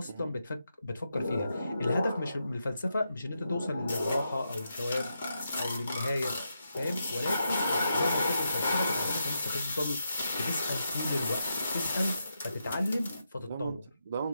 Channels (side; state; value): both; inverted; correlation -0.84